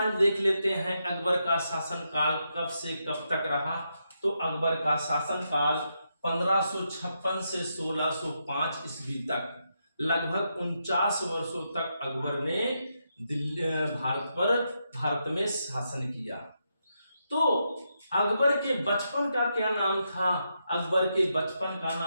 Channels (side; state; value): both; inverted; correlation -0.82